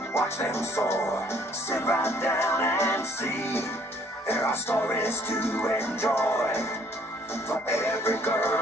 watch them soar, sit right down and see. There are stories to enjoy for every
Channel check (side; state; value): both; normal; correlation 0.61